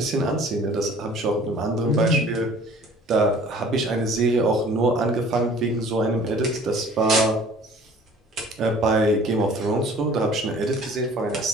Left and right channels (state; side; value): normal; both; correlation 0.50